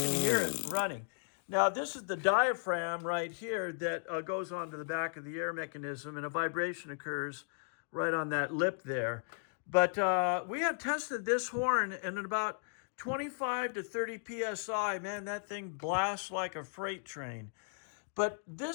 can hear it running. Now, this is the diaphragm right here that goes onto the back of the air mechanism, and a vibration occurs right on that lip there. But we have tested this horn, and at about 25 to 30 psi, man, that thing blasts like a freight train. But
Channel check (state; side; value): silent; right; digital silence